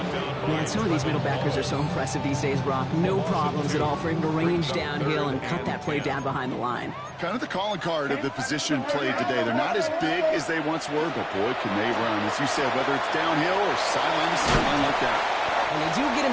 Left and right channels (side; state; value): both; identical; correlation 1.00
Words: Man, some of these middle backers are so impressive these days, Brock. No problems at all for him to range downhill and cut that play down behind the line. Kind of the calling card of the position played today. They're not as big as they once were, but boy, can they run. As you said, whether it's downhill or sideline to sideline like that. And they do get